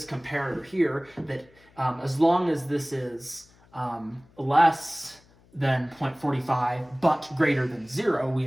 comparator here that as long as this is less than 0.45 but greater than 0, we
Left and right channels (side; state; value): left; noise; hum, 29 dB below the sound